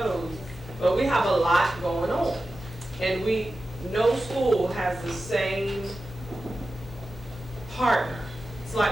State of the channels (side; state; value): both; normal; correlation 0.93